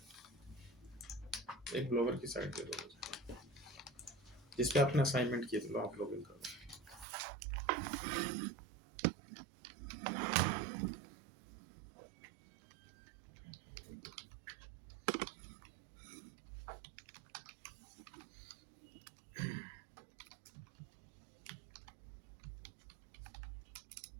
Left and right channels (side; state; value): left; drops out; at 7.1 s